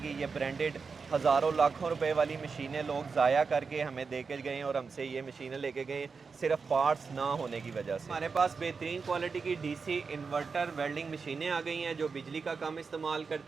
ये ब्रांडेड हज़ारों लाखों रुपए वाली मशीनें लोग ज़ाया करके हमें दे के गए और हमसे ये मशीनें लेके गए सिर्फ पार्ट्स ना होने की वजह से। हमारे पास बेहतरीन क्वालिटी की DC इन्वर्टर वेल्डिंग मशीनें आ गई हैं जो बिजली का काम इस्तेमाल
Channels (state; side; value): quieter; left; 5.0 dB